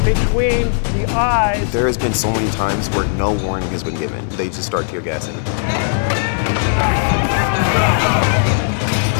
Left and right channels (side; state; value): right; silent; digital silence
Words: between the eyes. There has been so many times where no warning has been given. They just start tear gassing.